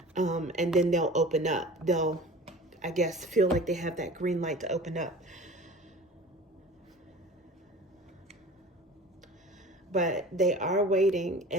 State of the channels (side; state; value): both; normal; correlation 0.40